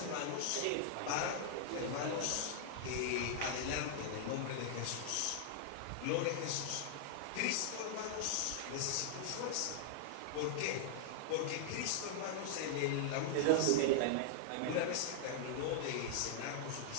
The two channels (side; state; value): both; different; correlation -0.01